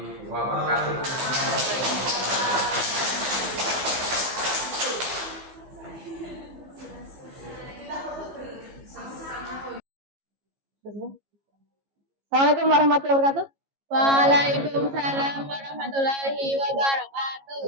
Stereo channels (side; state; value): left; late; 15 ms